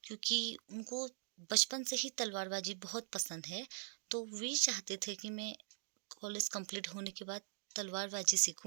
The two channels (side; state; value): left; silent; digital silence